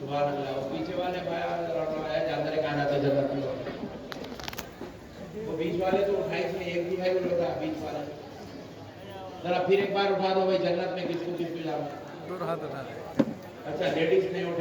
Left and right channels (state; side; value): identical; both; correlation 1.00